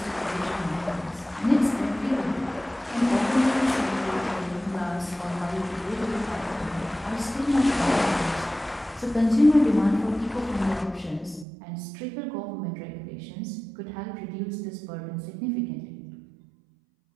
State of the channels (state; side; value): drops out; left; at 11.5 s